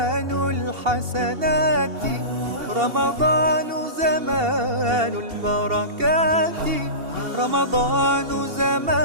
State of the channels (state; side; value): late; left; 2.7 ms